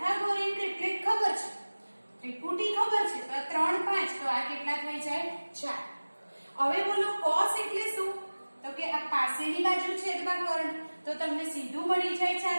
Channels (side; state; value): both; inverted; correlation -1.00